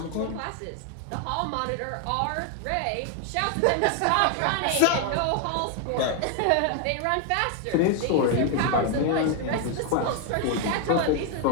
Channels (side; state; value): both; different; correlation 0.00